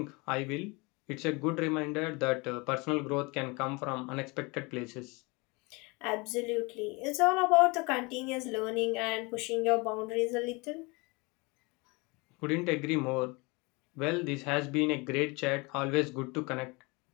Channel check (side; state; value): right; quieter; 27.0 dB